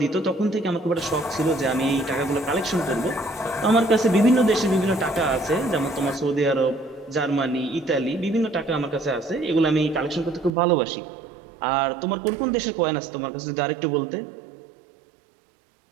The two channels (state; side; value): drops out; left; at 10.5 s